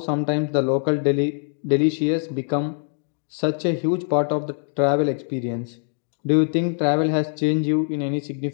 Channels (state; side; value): silent; right; 63 dB below the other